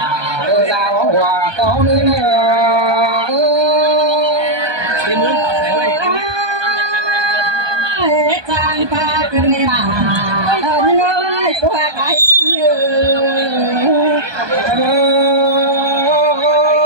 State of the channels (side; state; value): left; late; 1.2 ms